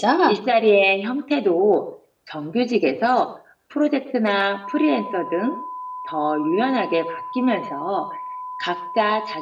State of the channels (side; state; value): both; identical; correlation 1.00